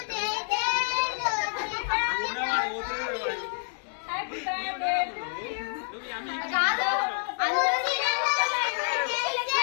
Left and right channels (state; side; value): silent; right; 59 dB below the other